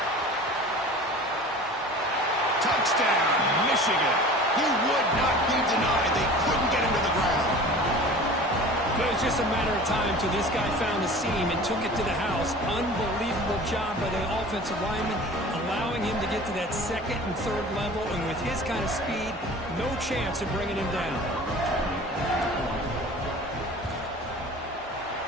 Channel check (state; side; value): normal; both; correlation 0.41